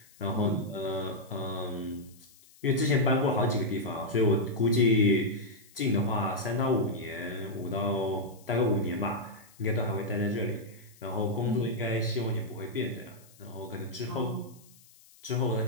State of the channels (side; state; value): left; noise; hiss, 26 dB below the sound